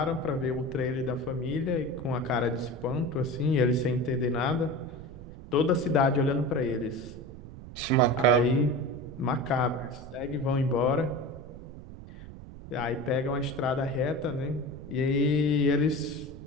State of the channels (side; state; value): right; noise; rumble, 14 dB below the sound